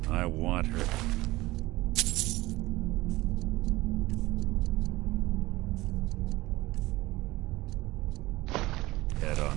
I want her. Head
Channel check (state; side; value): quieter; left; 19.1 dB